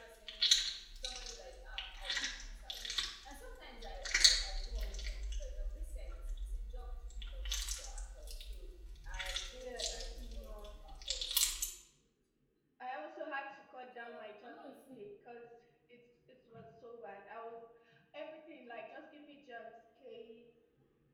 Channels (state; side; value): identical; both; correlation 1.00